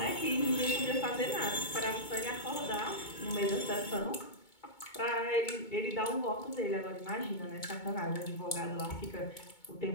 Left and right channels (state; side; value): late; right; 2.2 ms